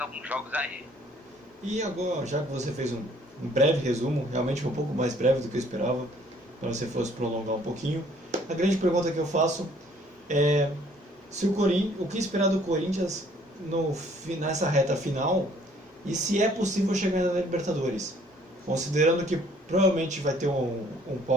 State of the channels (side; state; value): both; normal; correlation 0.59